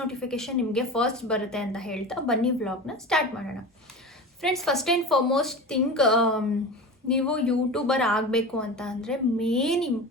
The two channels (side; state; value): both; normal; correlation 0.30